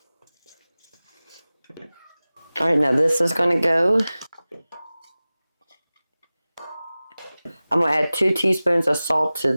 All right, now this is going to go. I'm going to add 2 teaspoons of salt to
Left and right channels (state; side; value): inverted; both; correlation -0.98